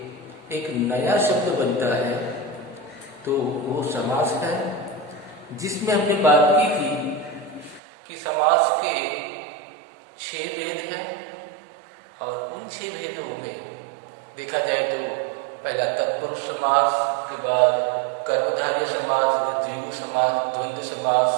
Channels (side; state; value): left; drops out; at 7.8 s